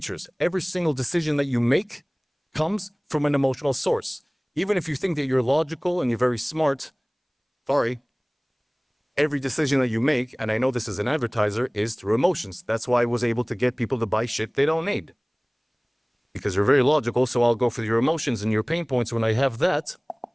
Every single decision that you make comes from an emotional source. Even if you think that you're logical and you're very smart, every decision that you make, and I know this as an advertiser, is through emotions. That's why I was able to get people to buy shit they don't need. Because you're very logical, so I'll go for your emotions and your pain points. When I have that,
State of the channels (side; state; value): both; identical; correlation 1.00